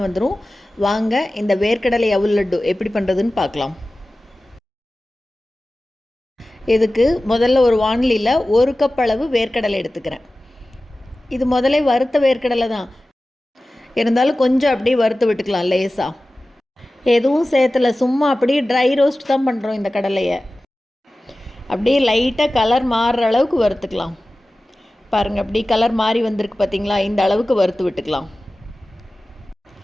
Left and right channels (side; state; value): both; normal; correlation 0.96